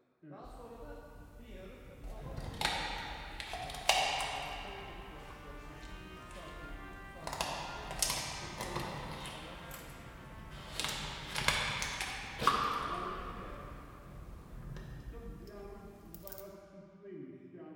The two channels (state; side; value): identical; both; correlation 1.00